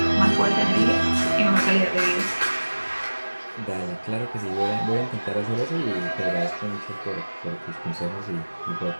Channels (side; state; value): both; inverted; correlation -1.00